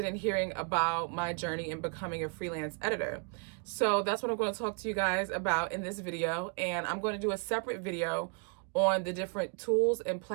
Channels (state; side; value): quieter; left; 36.4 dB